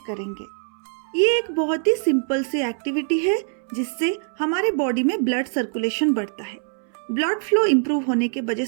करेंगे। ये एक बहुत ही सिंपल सी एक्टिविटी है, जिससे हमारे बॉडी में ब्लड सर्कुलेशन बढ़ता है। ब्लड फ्लो इंप्रूव होने के वजह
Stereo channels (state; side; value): silent; left; 63 dB below the other